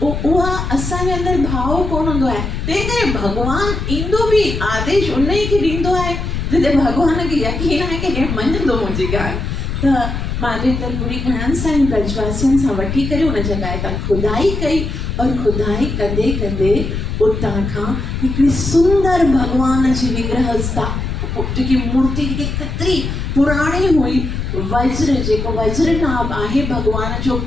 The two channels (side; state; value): left; noise; rumble, 3 dB below the sound